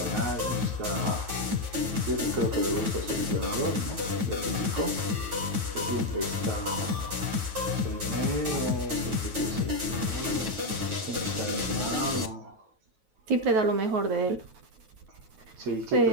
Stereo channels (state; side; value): late; left; 9.3 ms